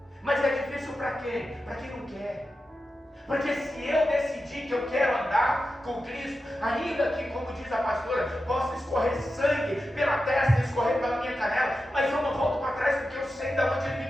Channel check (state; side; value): normal; both; correlation 0.91